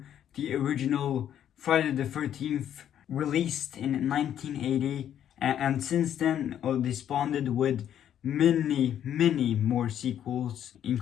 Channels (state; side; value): quieter; right; 10.2 dB